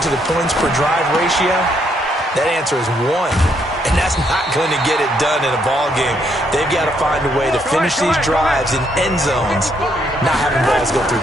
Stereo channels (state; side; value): normal; both; correlation 0.73